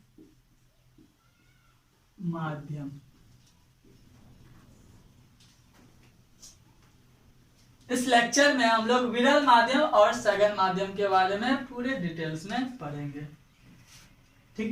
माध्यम। इस लेक्चर में हम लोग विरल माध्यम और सघन माध्यम के बारे में पूरे डिटेल्स में पढ़ेंगे।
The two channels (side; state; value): both; identical; correlation 1.00